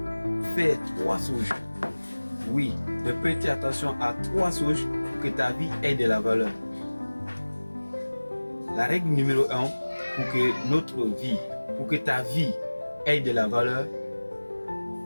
faire 3 choses, oui, de prêter attention à 3 choses pour que ta vie ait de la valeur. La règle numéro 1 pour que notre vie, pour que ta vie ait de la valeur,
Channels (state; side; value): inverted; both; correlation -1.00